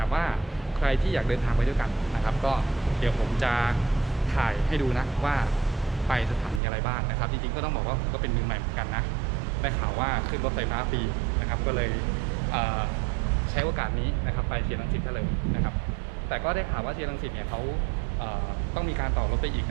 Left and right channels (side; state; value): left; drops out; at 6.6 s